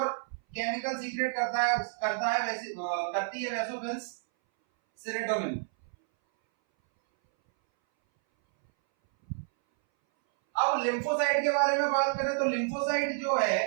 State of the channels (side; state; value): left; silent; 58 dB below the other